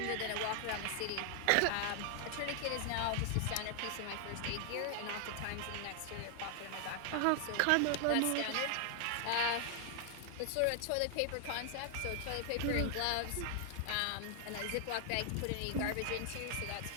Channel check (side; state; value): both; different; correlation 0.00